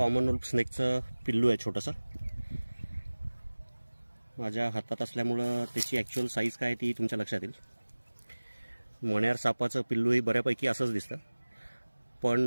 wolf स्नेकचं पिल्लू आहे छोटंसं. माझ्या हातात असल्यामुळं त्याची ॲक्च्युअल साईज काय ती तुमच्या लक्षात येईल. मण्यार सापाचं पिल्लूही बऱ्यापैकी असंच दिसतं,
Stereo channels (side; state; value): both; inverted; correlation -1.00